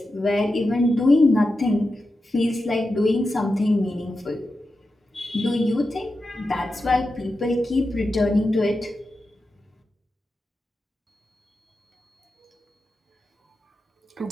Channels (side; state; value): both; normal; correlation 0.90